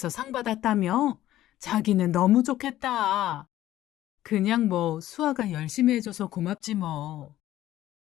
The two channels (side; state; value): right; quieter; 13.9 dB